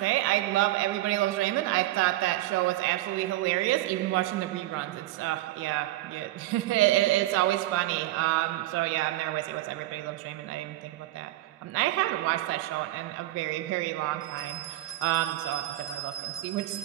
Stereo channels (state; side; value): quieter; left; 16.3 dB